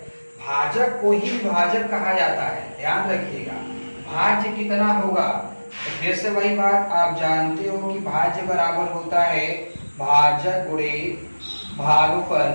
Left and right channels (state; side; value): inverted; both; correlation -1.00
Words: भाजक को ही विभाजक कहा जाता है, ध्यान रखिएगा। भाज्य कितना होगा, तो फिर से वही बात, आप जानते हो कि भाज्य बराबर होता है भाजक गुणे भागफल